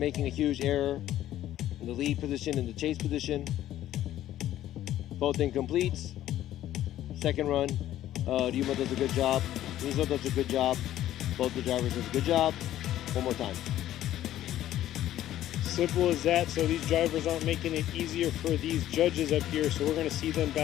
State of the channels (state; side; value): quieter; right; 12.9 dB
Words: a huge error in the lead position and the chase position. Both incompletes. Second run, Ryuma does a good job. Mizo does a good job. Both the drivers does a good job. One more time. Simple as that. So these drivers aren't making it easier for these judges up here. So we're going to see them